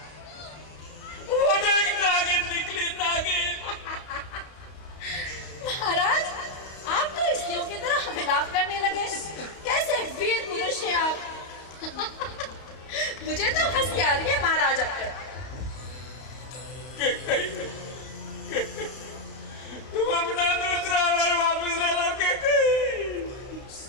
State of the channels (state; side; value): late; right; 32 ms